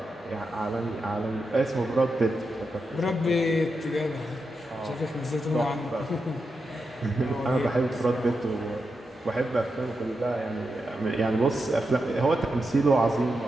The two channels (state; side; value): normal; both; correlation 0.87